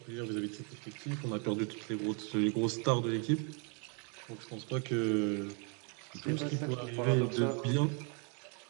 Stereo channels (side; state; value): left; quieter; 36.6 dB